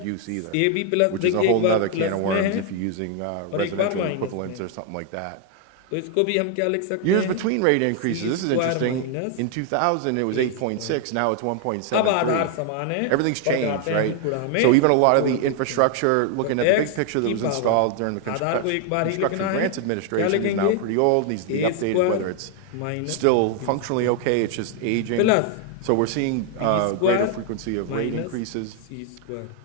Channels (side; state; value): both; different; correlation 0.00